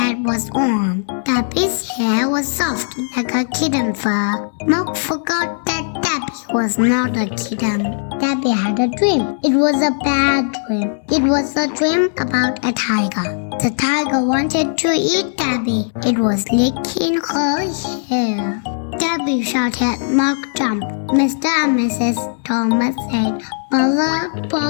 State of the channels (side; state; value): right; silent; digital silence